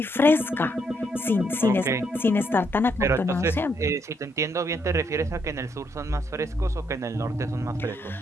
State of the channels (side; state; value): both; normal; correlation 0.75